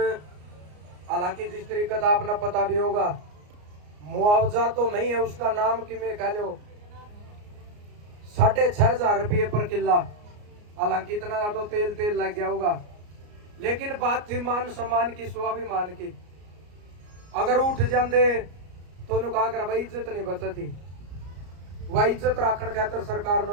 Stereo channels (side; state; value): left; late; 34 ms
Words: हालांकि जिस तरीके का आपने पता भी होगा, मुआवजा तो नहीं है, उसका नाम कि मैं कह लो 6,500 रुपये पर किला, हालांकि इतना तो तेल तेल लग गया होगा, लेकिन बात थी मान सम्मान की, स्वाभिमान की। अगर उठ जाते तो कहा कर भाई इज्जत नहीं बचती, वह इज्जत राखण खातर सरकार